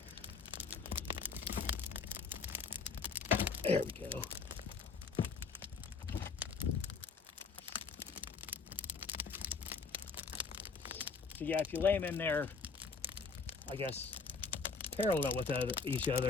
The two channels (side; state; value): right; quieter; 5.0 dB